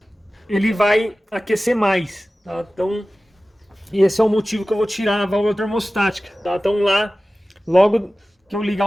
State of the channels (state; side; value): normal; both; correlation 0.96